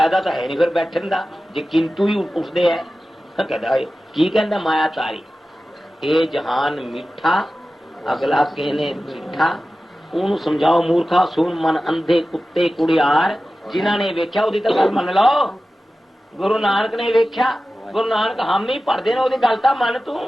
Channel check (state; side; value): normal; both; correlation 0.95